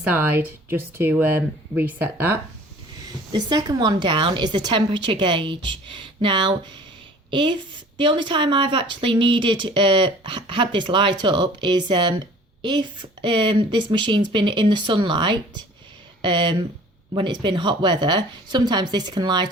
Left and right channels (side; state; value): both; normal; correlation 0.48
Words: just to reset that. The second one down is the temperature gauge. Now, if the only time I've actually had this light up is if this machine's been in the sunlight, when it's been hot weather, sometimes this can